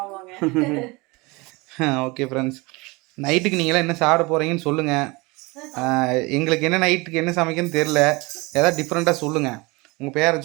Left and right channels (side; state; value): left; quieter; 24.9 dB